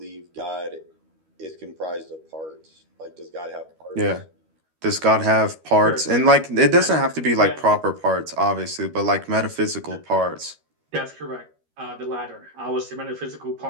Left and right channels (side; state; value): left; late; 13 ms